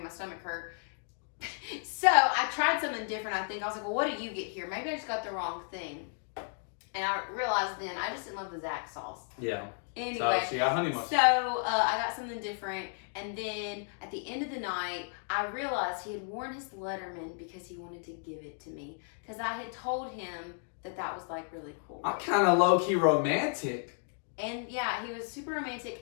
my stomach hurt. So I tried something different, I think. I was like, well, what did you get here? Maybe I just got the wrong thing. And I realized then I just didn't love the Zax sauce. Yeah. Anyway, So she got honey mustard. so I got something different, and then at the end of the night, I realized he had worn his Letterman because he wanted to give it to me. Because I had told him that was like really cool. I'm kind of low key romantic. And yeah, he was super romantic.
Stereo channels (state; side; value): silent; right; 56 dB below the other